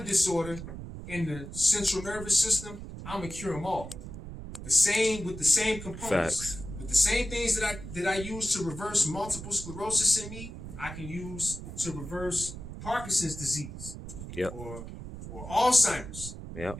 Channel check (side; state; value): right; noise; rumble, 10 dB below the sound